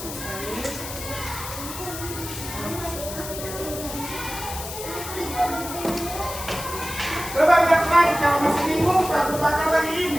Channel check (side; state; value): left; noise; hiss, 9 dB below the sound